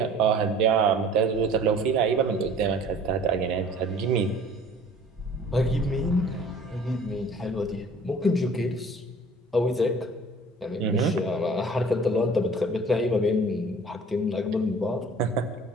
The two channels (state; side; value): normal; both; correlation 0.49